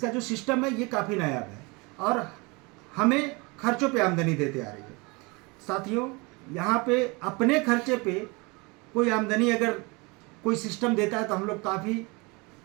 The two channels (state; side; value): quieter; left; 27.3 dB